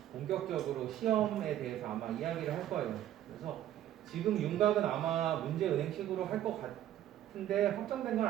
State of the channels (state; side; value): quieter; left; 12.1 dB